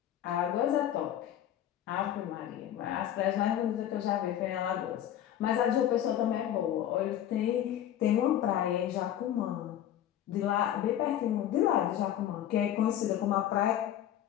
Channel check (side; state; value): right; quieter; 11.2 dB